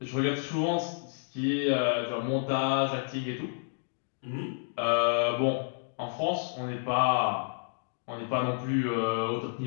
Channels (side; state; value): right; silent; digital silence